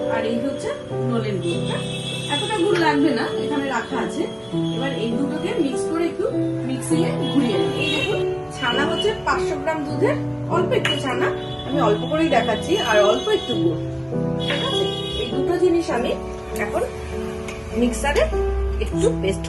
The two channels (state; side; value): identical; both; correlation 1.00